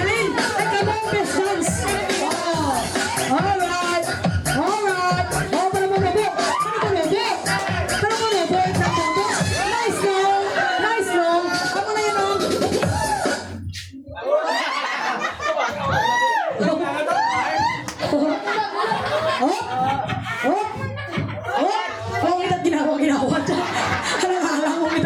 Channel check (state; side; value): identical; both; correlation 1.00